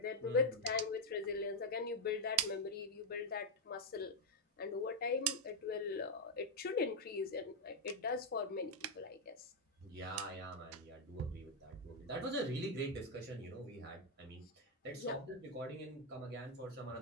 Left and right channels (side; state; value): both; normal; correlation 0.00